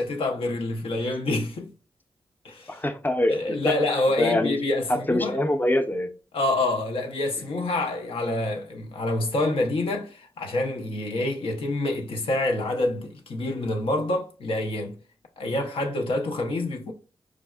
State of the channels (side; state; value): both; normal; correlation 0.70